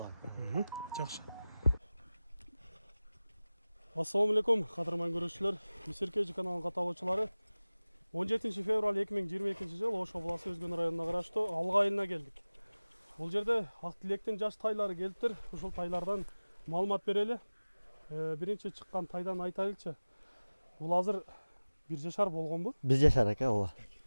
Жақшы. Ассалаумалейкум, қадырман көрушілер. Месеркежі каналының қаталаушылары. 17 февраль 2022 жыл Ош облысы Өзген районына қарашты Алға айылына келдік. Бұл жерде Ақтілектен жаш тайлары келіптір. Ушул тайлардан маалымат берелі. Бірінші шыққан тайдан айтайлықшы. Бұл азыр бір жашар болған бұл? Бір жашар ака, ола.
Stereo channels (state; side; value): inverted; both; correlation -0.99